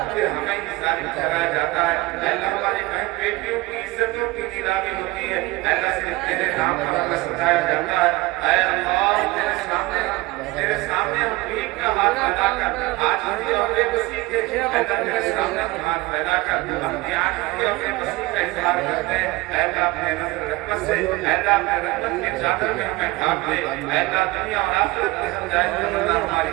फिर हमें ही जालिम ठहराया जाता है। अल्लाह हमारी बहन बेटियों की इज्जतों की नीलामी होती है। अल्लाह सिर्फ तेरे नाम पर हमें सताया जाता है। ऐ अल्लाह तेरे सामने हम भीख का हाथ फैलाकर आजिज़ी और बेबसी के अल्लाह तेरे सामने हम हाथ फैलाकर अपनी आजिज़ी और बेबसी का इज़हार करते हैं। अल्लाह अपने नज़र रहमत से अल्लाह अपने रहमत के चादर में हमें ढांप दे। अल्लाह दुनिया और आखिरत की हर जायज़ तमन्ना हमारी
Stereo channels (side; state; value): left; quieter; 21.1 dB